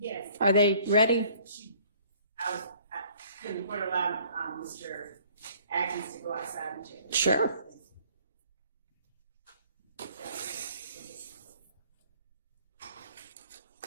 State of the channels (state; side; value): inverted; both; correlation -0.57